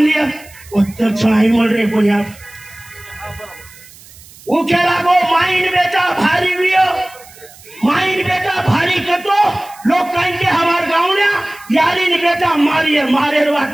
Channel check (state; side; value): noise; right; hiss, 22 dB below the sound